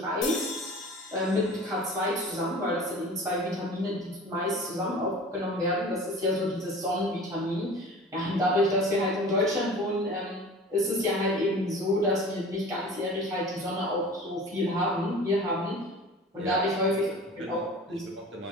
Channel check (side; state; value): both; normal; correlation 0.41